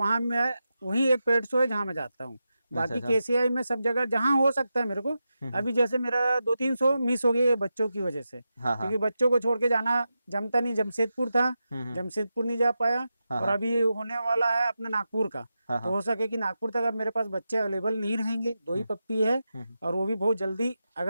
मैं, वही एक पेट शो है जहाँ मैं जाता हूँ। अच्छा बाकी अच्छा। केसीआई में सब जगह जहाँ हो सकता है मेरे को। हम्म। अभी जैसे मेरा 2-3 शो मिस हो गए बच्चों की वजह से, हाँ हाँ। क्योंकि बच्चों को छोड़ के जाना जमता नहीं। जमशेदपुर था, हम्म। जमशेदपुर नहीं जा पाया। हाँ और हाँ अभी होने वाला है अपना नागपुर का। हाँ तो हाँ। हो सके कि नागपुर तक अब मेरे पास बच्चे अवेलेबल नहीं रहेंगे, 2 ही हम्म पप्पी है। हम्म और वो भी बहुत जल्दी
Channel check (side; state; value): both; inverted; correlation -0.90